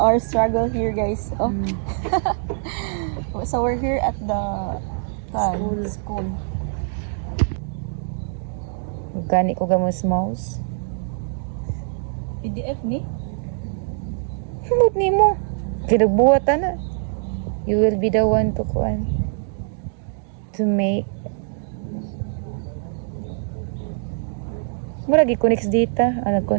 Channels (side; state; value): left; silent; digital silence